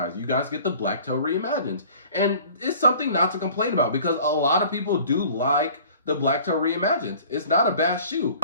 You guys get the Black Toe Reimagined. And it's something not to complain about because a lot of people do like the Black Toe Reimagined. It's not a bad shoe. A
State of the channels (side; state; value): both; inverted; correlation -0.47